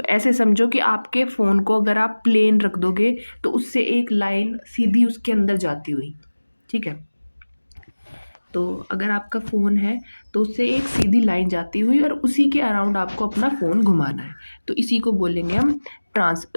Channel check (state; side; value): inverted; both; correlation -1.00